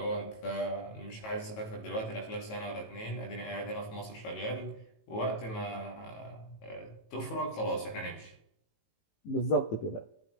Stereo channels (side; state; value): right; late; 18 ms